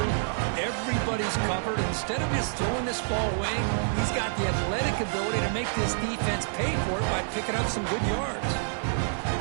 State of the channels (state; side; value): silent; left; 60 dB below the other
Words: everybody's covered. Instead of just throwing this ball away, he's got the athletic ability to make this defense pay for it by picking up some good yards.